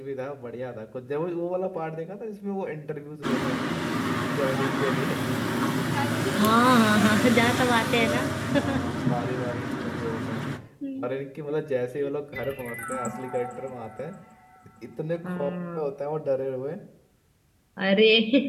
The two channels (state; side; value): identical; both; correlation 1.00